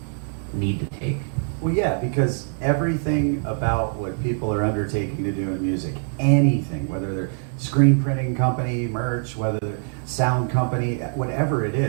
need to take. Well, yeah, because everything about what people are undertaking to do in music, anything, whether they're screen printing company, merch, whether they're sound company, whatever it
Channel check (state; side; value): silent; left; 58 dB below the other